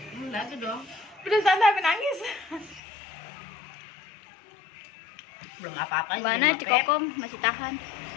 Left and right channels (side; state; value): right; drops out; at 2.8 s